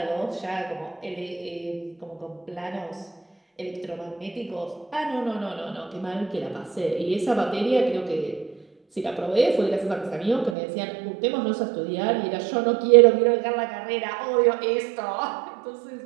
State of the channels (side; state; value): left; drops out; at 10.6 s